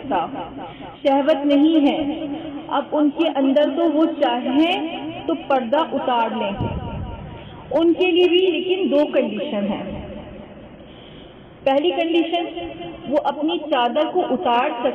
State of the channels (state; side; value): identical; both; correlation 1.00